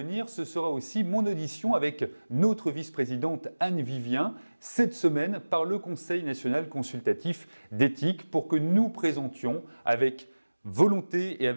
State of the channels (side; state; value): both; inverted; correlation -1.00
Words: ce sera aussi mon audition avec notre vice-présidente Anne Vivien cette semaine par le Conseil national consultatif d'éthique pour que nous présentions avec volonté et